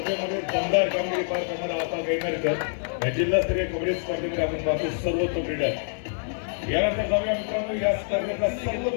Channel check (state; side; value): silent; right; digital silence